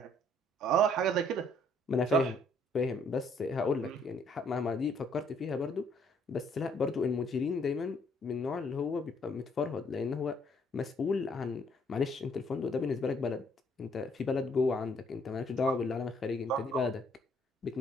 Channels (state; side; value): normal; both; correlation 0.65